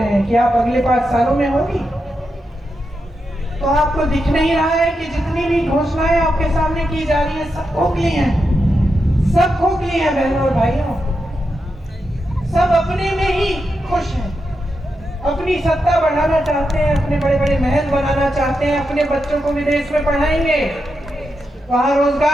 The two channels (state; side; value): normal; both; correlation 0.86